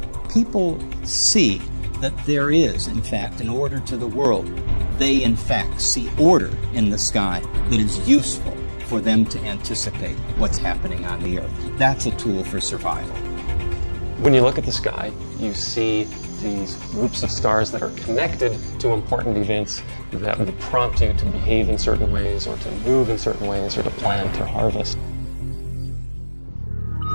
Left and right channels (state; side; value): inverted; both; correlation -1.00